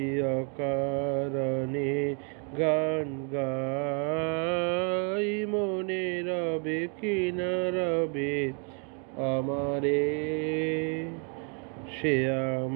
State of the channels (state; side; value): quieter; left; 38.9 dB